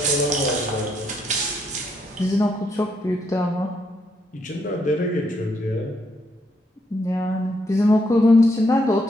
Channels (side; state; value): both; normal; correlation 0.75